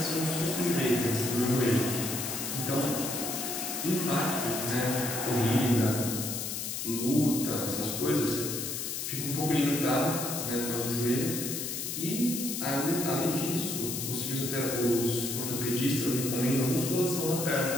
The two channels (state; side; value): noise; left; hiss, 4 dB below the sound